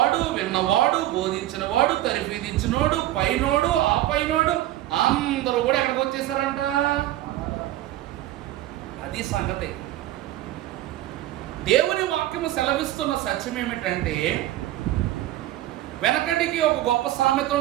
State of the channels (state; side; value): quieter; left; 14.5 dB